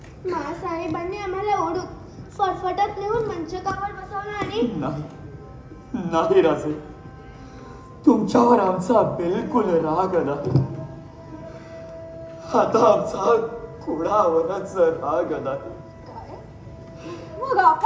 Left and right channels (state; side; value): identical; both; correlation 1.00